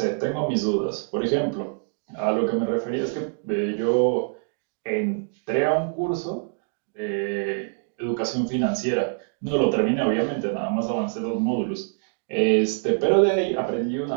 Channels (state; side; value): silent; left; digital silence